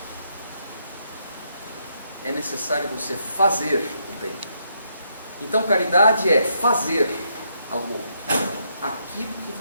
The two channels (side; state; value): both; inverted; correlation -0.77